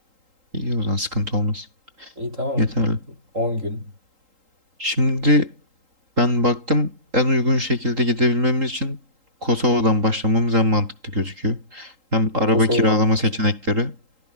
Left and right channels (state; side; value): late; left; 3.8 ms